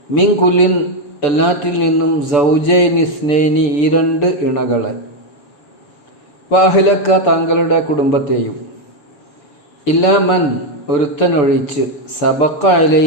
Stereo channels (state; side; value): late; right; 6.8 ms